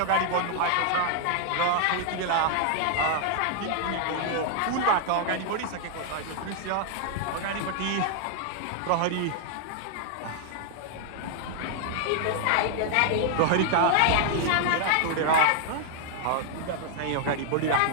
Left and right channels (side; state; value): both; different; correlation 0.00